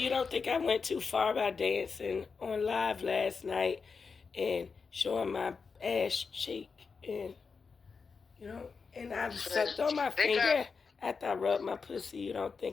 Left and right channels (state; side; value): quieter; right; 5.2 dB